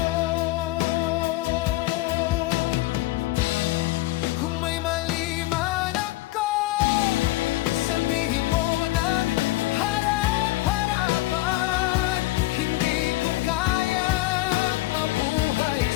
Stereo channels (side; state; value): right; quieter; 19.0 dB